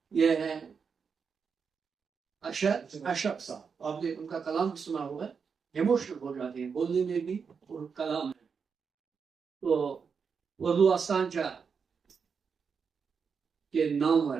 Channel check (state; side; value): quieter; left; 6.0 dB